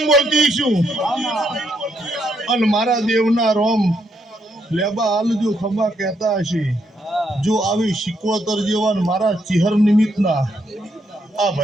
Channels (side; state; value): both; normal; correlation 0.76